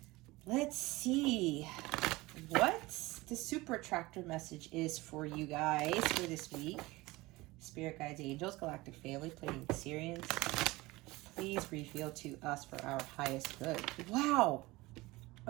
Let's see what the super attractor message is for you guys for this week. Spirit guides, angels, galactic family, playing Syrians. Please reveal to us for our highest good. Wow.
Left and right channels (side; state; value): left; quieter; 20.8 dB